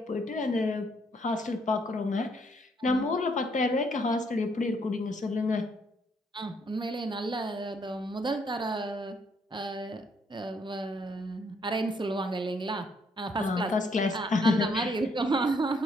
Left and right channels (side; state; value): both; normal; correlation 0.70